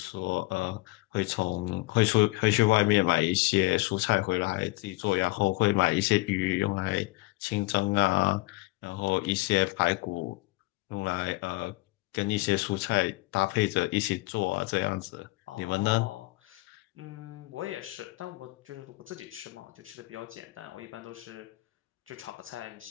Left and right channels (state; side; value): quieter; right; 21.8 dB